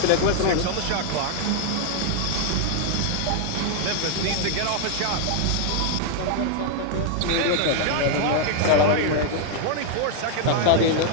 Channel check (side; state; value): both; different; correlation 0.00